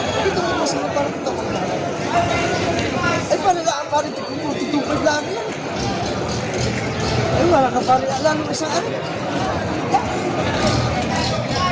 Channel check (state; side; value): identical; both; correlation 1.00